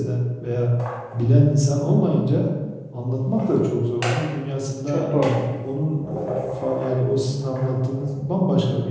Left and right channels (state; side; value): identical; both; correlation 1.00